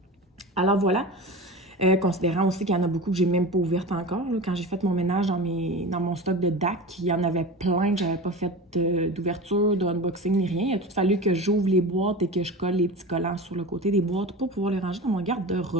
Alors, voilà. Considérant aussi qu'il y en a beaucoup que j'ai même pas ouvertes encore. Là. Quand j'ai fait mon ménage dans mon stock de DAC, il y en avait plein que j'avais pas fait d'ouverture, d'unboxing ni rien. Il a tout fallu que j'ouvre les boîtes et que je colle les petits collants sur le côté des boîtes pour pouvoir les ranger dans mon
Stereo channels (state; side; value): normal; both; correlation 0.30